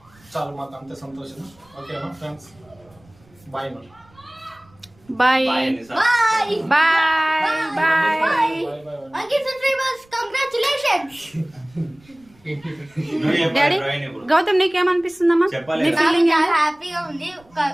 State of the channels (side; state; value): right; noise; rumble, 29 dB below the sound